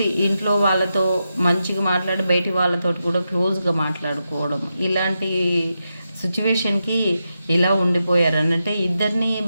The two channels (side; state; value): both; inverted; correlation -0.87